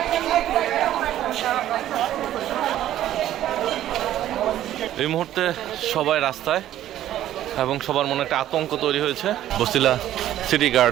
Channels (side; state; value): left; quieter; 12.6 dB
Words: এই মুহূর্তে সবাই রাস্তায় এবং সবার মনে একটা আতঙ্ক তৈরি হয়েছে। বসিলা সিটি